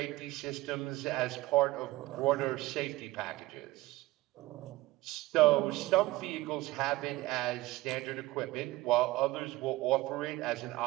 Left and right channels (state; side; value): quieter; left; 18.9 dB